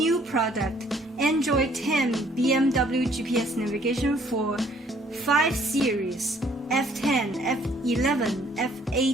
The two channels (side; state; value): both; normal; correlation 0.61